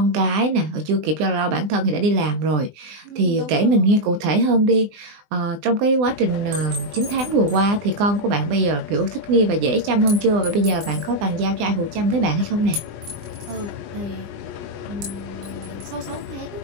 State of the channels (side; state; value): left; late; 20 ms